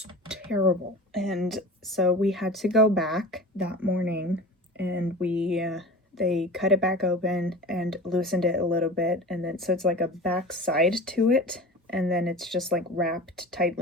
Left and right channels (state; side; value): normal; both; correlation 0.35